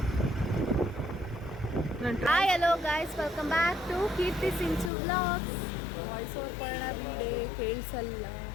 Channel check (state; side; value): drops out; right; at 4.9 s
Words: Hi hello guys, welcome back to Keerthi Sinchu vlogs. Voice over ಮಾಡೋಣ ಬಿಡೆ,